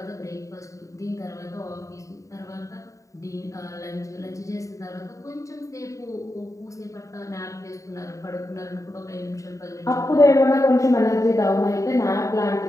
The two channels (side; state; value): right; late; 0.16 ms